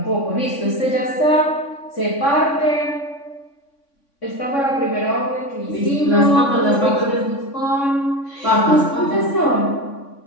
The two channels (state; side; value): late; right; 3.6 ms